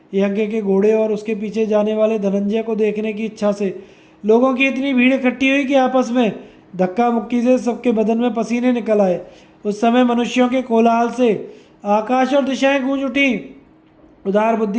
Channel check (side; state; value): both; identical; correlation 1.00